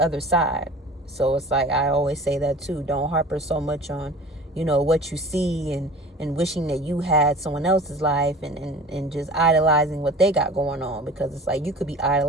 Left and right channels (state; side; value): normal; both; correlation 0.41